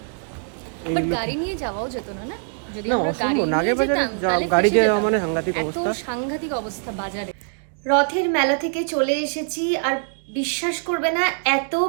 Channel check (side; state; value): left; silent; digital silence